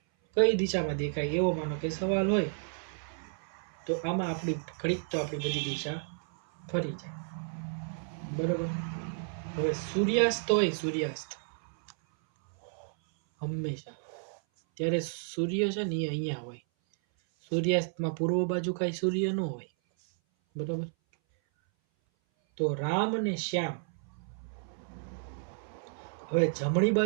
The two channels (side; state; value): left; silent; 57 dB below the other